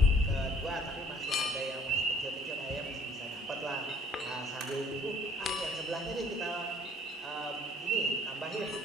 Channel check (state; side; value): normal; both; correlation 0.56